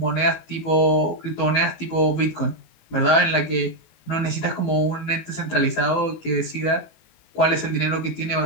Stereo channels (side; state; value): right; late; 19 ms